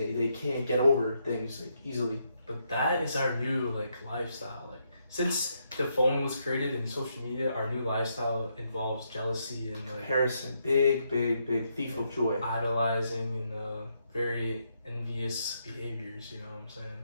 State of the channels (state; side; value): inverted; both; correlation -0.78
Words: can't get over things like easily. But that is our new like lifestyle. Like since the phone was created and social media, our new lifestyle involves jealousy and like comparison, big thief of joy, idolizing and very envious behaviors. You know what I'm saying?